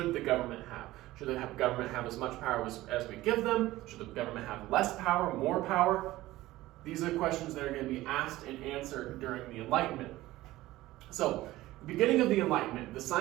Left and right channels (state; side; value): quieter; left; 17.0 dB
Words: the government have? Should the government have as much power as we give them? Should the government have less power, more power? These are questions that are going to be asked and answered during the Enlightenment. So, the beginning of the Enlightenment, the